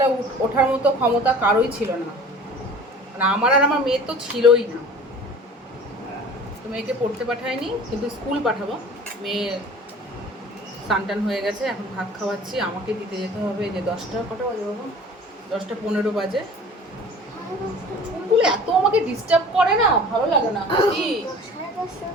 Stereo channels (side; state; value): both; normal; correlation 0.44